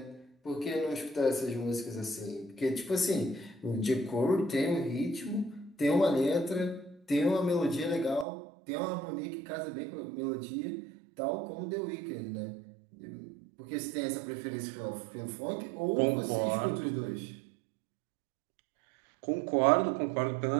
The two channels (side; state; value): left; drops out; at 8.2 s